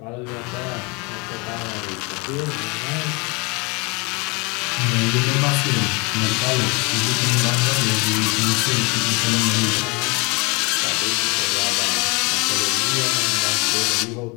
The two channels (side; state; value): right; quieter; 29.0 dB